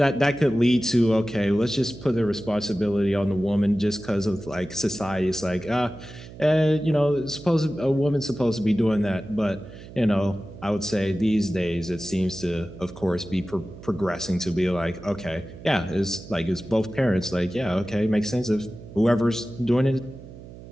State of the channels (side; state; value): right; noise; hum, 16 dB below the sound